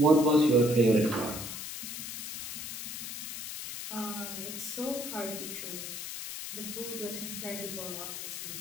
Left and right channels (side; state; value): left; noise; hiss, 7 dB below the sound